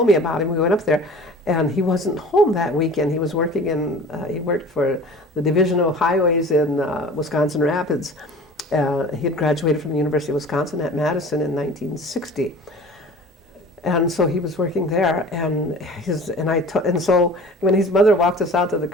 me about him, we went up there, and he wasn't home that weekend. He was working he worked for the Division of Highways in Wisconsin Rapids. He had graduated from the University of Wisconsin at Madison in 1960. And so he was working there, and so when his mother walked us out to the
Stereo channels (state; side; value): normal; both; correlation 0.42